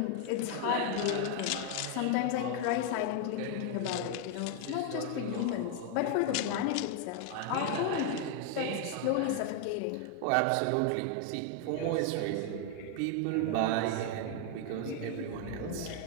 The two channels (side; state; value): both; different; correlation 0.00